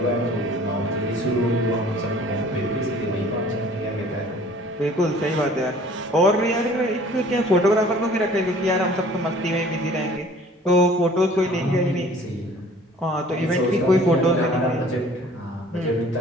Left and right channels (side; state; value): both; normal; correlation 0.51